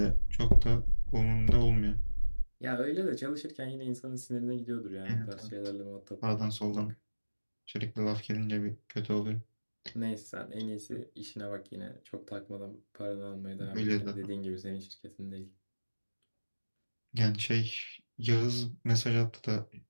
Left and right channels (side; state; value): both; inverted; correlation -1.00